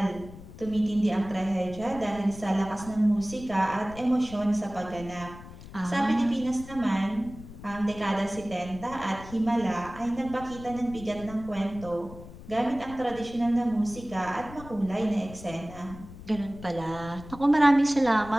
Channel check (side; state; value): left; noise; rumble, 16 dB below the sound